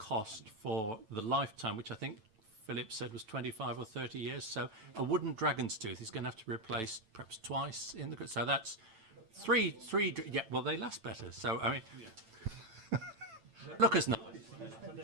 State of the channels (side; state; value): left; late; 9.0 ms